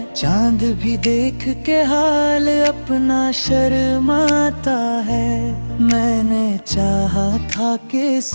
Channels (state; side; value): inverted; both; correlation -1.00